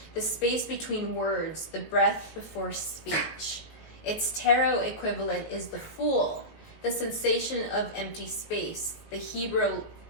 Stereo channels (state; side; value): late; right; 19 ms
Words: the space between words, the breath before speech. Its tarot equivalent is the Fool, the sensation of empty space, the Hebrew